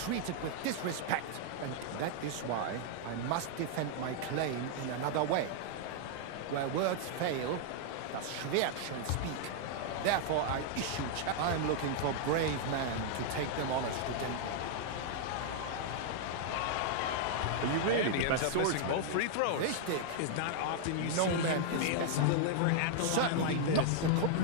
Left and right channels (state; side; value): different; both; correlation 0.00